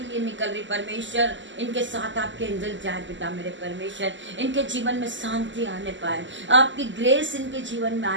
लिए निकल रही परमेश्वर, इनके साथ आपके एंजल जाए पिता मेरे परमेश्वर, इनके जीवन में शांति आने पाए, आपकी ग्रेस इनके जीवन में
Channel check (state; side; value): late; left; 0.54 ms